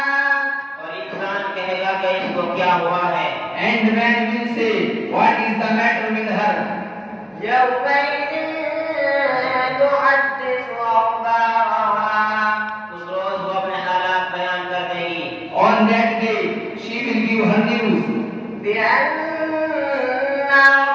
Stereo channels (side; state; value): both; identical; correlation 1.00